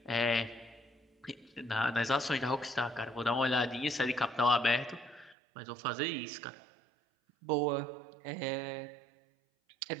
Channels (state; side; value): drops out; left; at 5.4 s